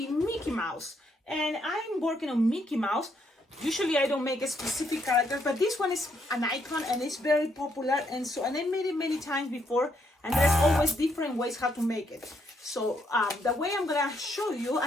Mickey Mouse, and I'm working on Mickey Mouse. Usually I don't make a specific character, but this one is an icon and it's very popular, and I made it many times before, and there's always different ways how to make it. So the way I'm going to show you,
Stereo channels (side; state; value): both; normal; correlation 0.74